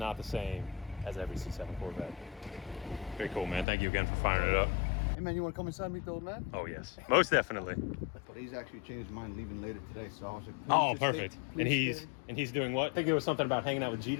the same as every C7 Corvette. Very cool, man. Thank you again for firing it up. Hey man, you want to come inside and meet the old man? Oh yes, most definitely. But he's actually changed his mind, leaving later today. So I was like, Oh, please just perfect. stay- And please stay. he's doing what? I think there was something about hanging out with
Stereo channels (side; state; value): right; drops out; at 3.7 s